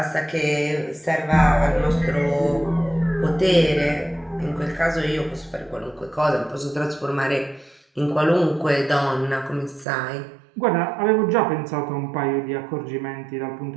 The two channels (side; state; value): left; drops out; at 9.9 s